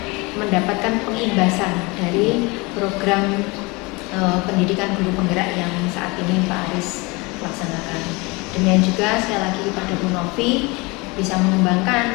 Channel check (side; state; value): right; quieter; 25.9 dB